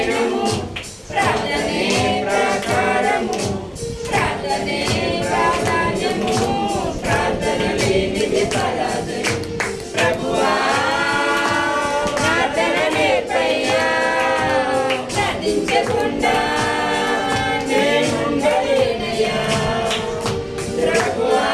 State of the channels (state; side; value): identical; both; correlation 1.00